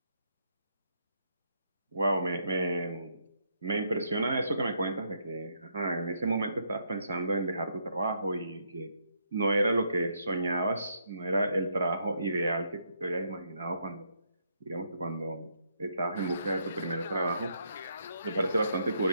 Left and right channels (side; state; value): both; inverted; correlation -0.75